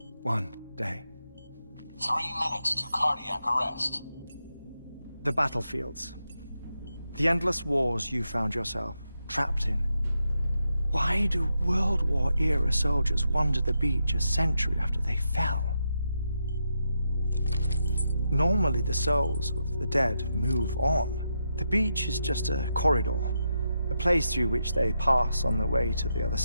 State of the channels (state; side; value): inverted; both; correlation -0.84